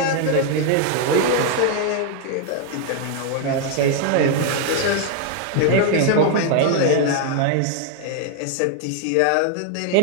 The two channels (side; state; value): both; different; correlation 0.00